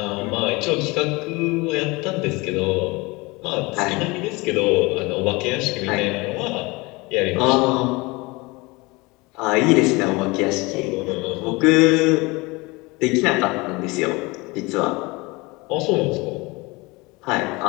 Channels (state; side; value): quieter; right; 24.5 dB